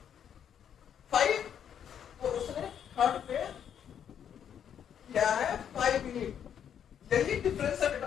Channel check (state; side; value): quieter; right; 8.8 dB